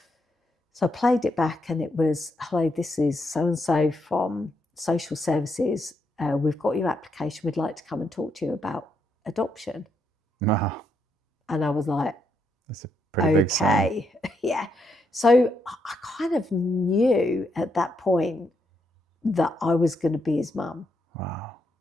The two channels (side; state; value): both; normal; correlation 0.78